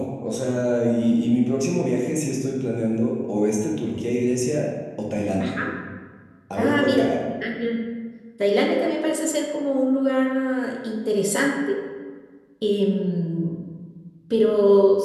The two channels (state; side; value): identical; both; correlation 1.00